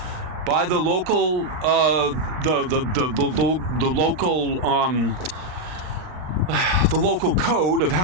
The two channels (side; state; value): left; late; 40 ms